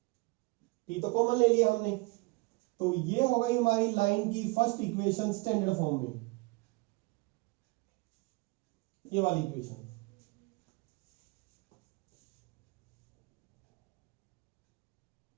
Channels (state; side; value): quieter; left; 25.3 dB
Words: t तो कॉमन ले लिया हमने, तो ये हो गई हमारी लाइन की फर्स्ट इक्वेशन स्टैंडर्ड फॉर्म में, ये वाली equation.